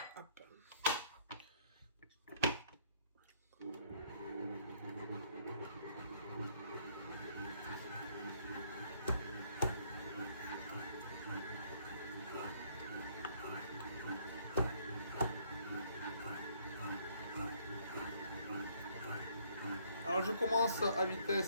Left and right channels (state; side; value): inverted; both; correlation -0.65